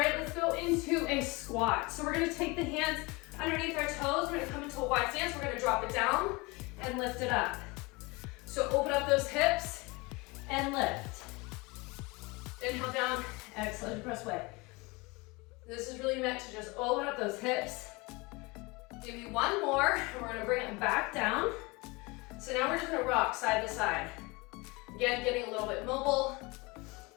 let's go into a squat. So we're gonna take the hands underneath our toes. We're gonna come into a wide stance. We're gonna drop it down and lift it up. So open up those hips and lift. Inhale down, exhale, press away. This is really meant to just open up those hips. Give me one more, and we're gonna bring it back down. So now we're just gonna rock side to side. Again, getting a little bit mobile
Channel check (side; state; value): right; quieter; 25.4 dB